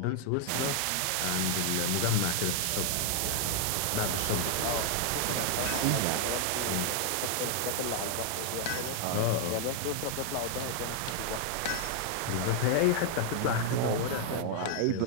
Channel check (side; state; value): both; different; correlation 0.00